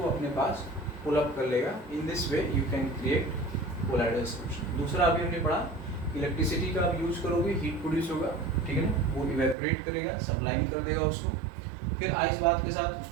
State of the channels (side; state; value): left; drops out; at 9.6 s